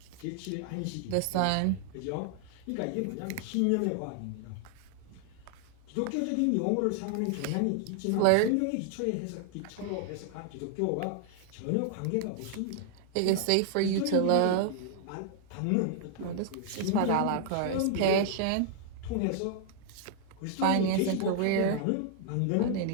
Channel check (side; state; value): both; different; correlation 0.00